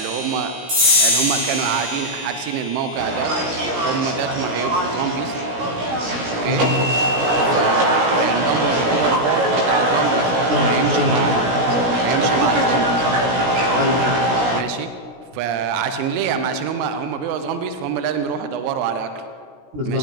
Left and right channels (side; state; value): left; late; 17 ms